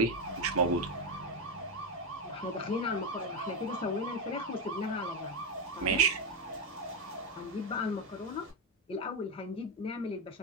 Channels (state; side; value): normal; both; correlation 0.08